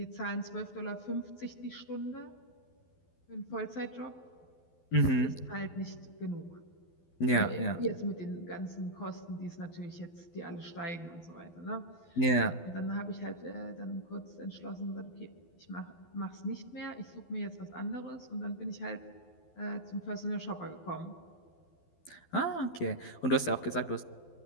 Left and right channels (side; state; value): right; late; 12 ms